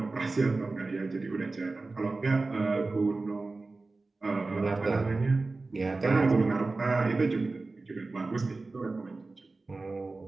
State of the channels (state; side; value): quieter; left; 3.5 dB